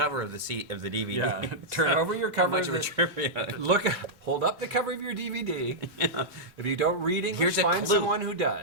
of the DVD. Yeah. Turn over your cover. Much of a of the- trivia. hold up the cover of your DVD. If you don't read English, Here's a find clue. someone who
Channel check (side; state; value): both; normal; correlation -0.08